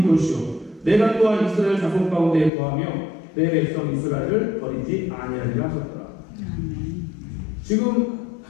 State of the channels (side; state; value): right; drops out; at 2.5 s